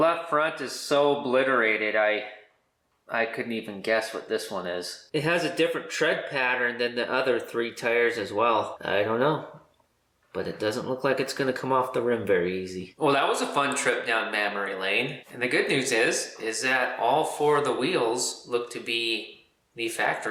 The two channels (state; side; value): identical; both; correlation 1.00